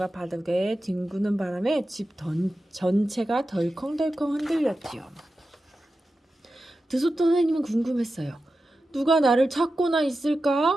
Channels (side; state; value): both; normal; correlation 0.92